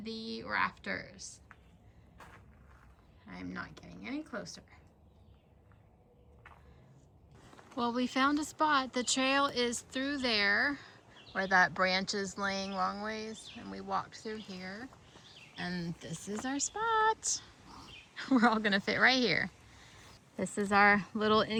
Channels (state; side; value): identical; both; correlation 1.00